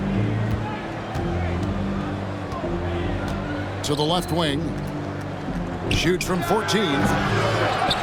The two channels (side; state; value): both; identical; correlation 1.00